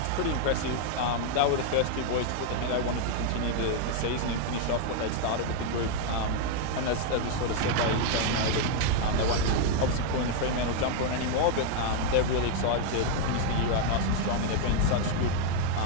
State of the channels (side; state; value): both; different; correlation 0.00